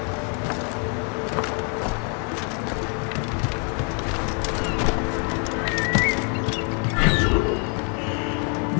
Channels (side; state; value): right; quieter; 39.0 dB